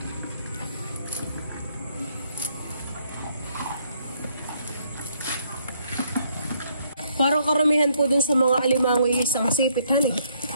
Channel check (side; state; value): both; inverted; correlation -0.70